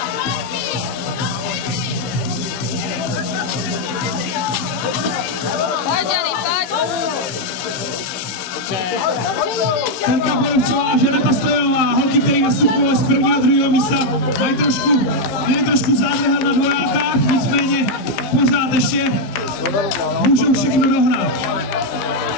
Terka Borovcová a Žaneta Stojanová, holky, které nastupují z prvního a druhého místa, mají trošku zádrhel na dvojákách, nicméně pořád ještě můžou všechno dohnat.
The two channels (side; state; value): right; late; 15 ms